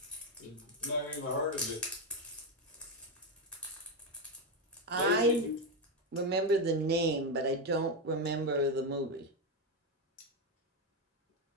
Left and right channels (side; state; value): both; normal; correlation 0.08